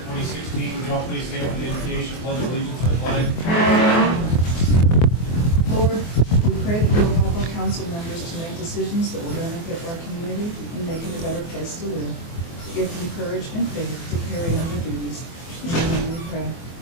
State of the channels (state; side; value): late; right; 24 ms